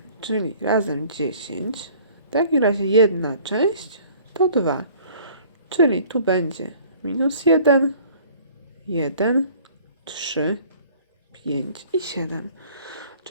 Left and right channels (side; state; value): both; inverted; correlation -0.51